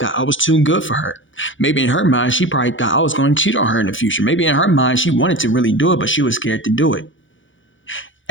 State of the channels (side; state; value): right; late; 0.56 ms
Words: I was too good for her. Maybe in her mind, she probably thought I was going to cheat on her in the future. Maybe in her mind, she wanted to really do it, but she was scared to do it.